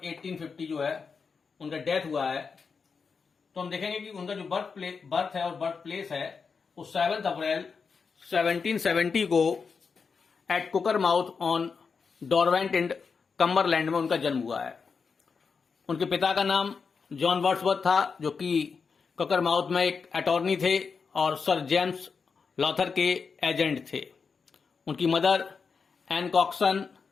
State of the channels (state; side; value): quieter; right; 5.3 dB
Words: 1850 जो है उनका डेथ हुआ है। तो हम देखेंगे कि उनका जो बर्थ है और बर्थ प्लेस है वो 7 अप्रैल 1770 को एट कुकरमाउथ ऑन डॉरवेंट एंड कम्बरलैंड में उनका जन्म हुआ है। उनके पिता का नाम जॉन वर्ड्सवर्थ था, जो कि कुकरमाउथ में एक अटॉर्नी थे और सर जेम्स लॉथर के एजेंट थे। उनकी मदर एन कॉक्सन